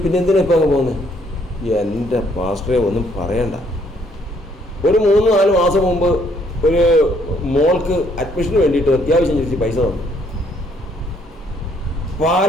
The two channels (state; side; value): normal; both; correlation 0.67